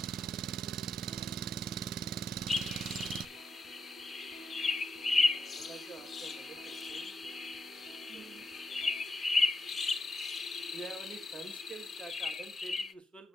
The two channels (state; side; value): normal; both; correlation 0.85